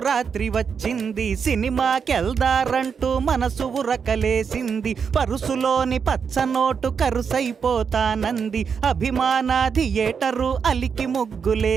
వచ్చింది, సినిమాకెళ్దారంటూ మనసు ఉరకలేసింది. పరుసులోని పచ్చనోటు కరుసైపోతానంది, అభిమాన థియేటరు అలికి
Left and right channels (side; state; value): left; quieter; 6.4 dB